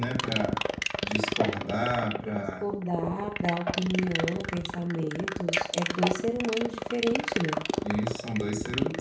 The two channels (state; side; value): identical; both; correlation 1.00